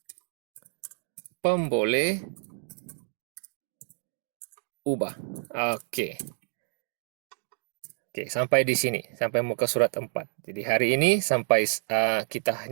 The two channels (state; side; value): silent; left; digital silence